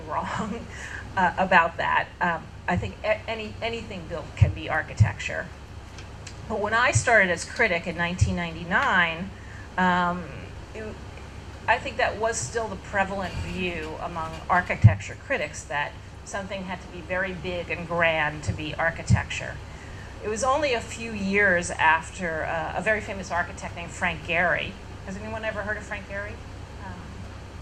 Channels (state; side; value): identical; both; correlation 1.00